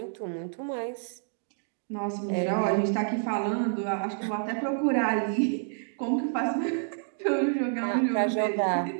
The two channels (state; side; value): silent; left; digital silence